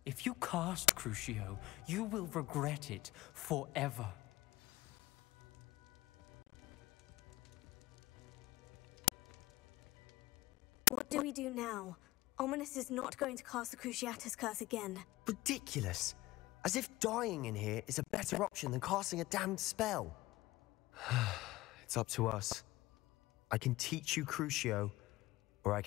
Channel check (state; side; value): quieter; right; 18.0 dB